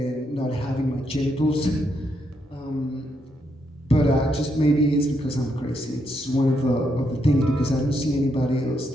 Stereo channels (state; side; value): normal; both; correlation 0.78